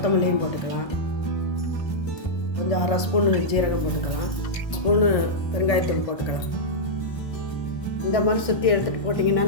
போட்டுக்கலாம். கொஞ்சம் 1/2 ஸ்பூனு ஜீரகம் போட்டுக்கலாம். ஸ்பூனு பெருங்காயத்தூள் போட்டுக்கலாம். இந்த மாதிரி சுற்றி எடுத்துகிட்டு போட்டிங்கன்னா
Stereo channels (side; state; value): right; late; 1.3 ms